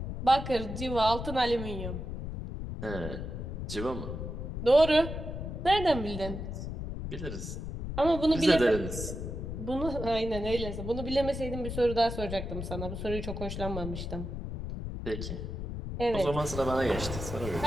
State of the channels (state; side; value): noise; left; rumble, 6 dB below the sound